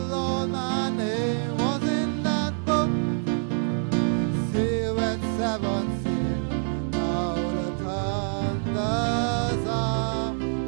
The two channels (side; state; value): left; silent; 61 dB below the other